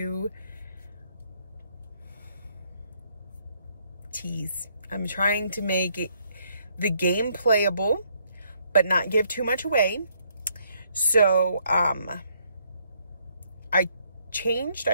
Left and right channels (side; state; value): both; inverted; correlation -0.70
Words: tease. I'm trying to make the game playable, but not give too much away. So, I changed.